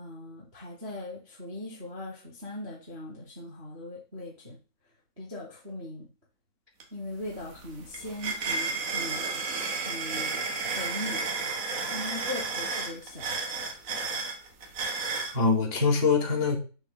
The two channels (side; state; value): left; late; 4.0 ms